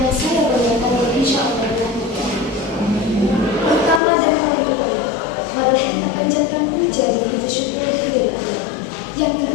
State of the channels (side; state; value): right; drops out; at 4.0 s